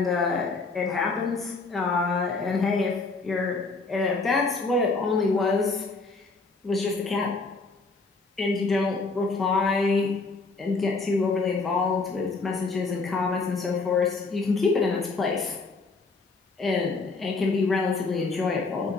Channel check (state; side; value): quieter; right; 3.9 dB